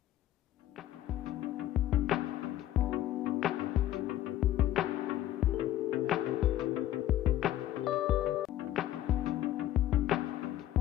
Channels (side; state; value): right; quieter; 13.2 dB